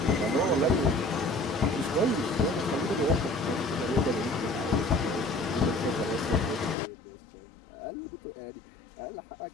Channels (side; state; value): right; drops out; at 6.8 s